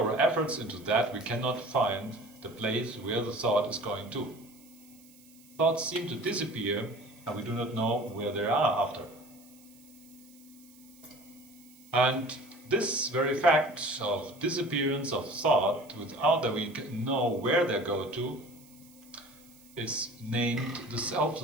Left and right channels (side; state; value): right; noise; hiss, 25 dB below the sound